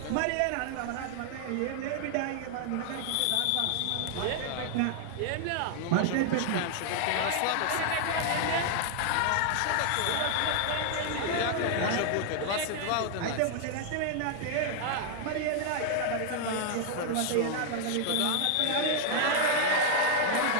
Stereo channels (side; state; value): both; different; correlation 0.00